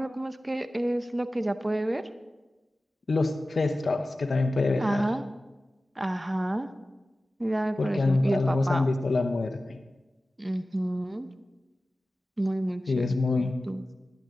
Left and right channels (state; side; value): normal; both; correlation 0.95